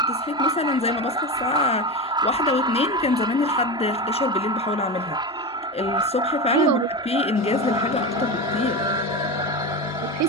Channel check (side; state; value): both; normal; correlation 0.21